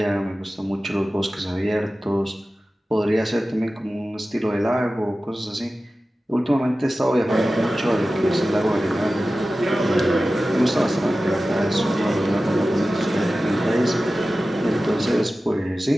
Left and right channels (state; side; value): normal; both; correlation 0.95